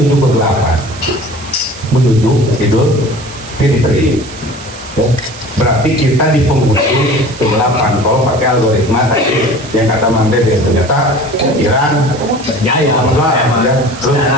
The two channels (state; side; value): noise; right; hiss, 16 dB below the sound